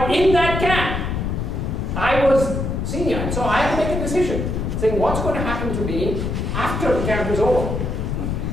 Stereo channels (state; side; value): noise; left; rumble, 2 dB below the sound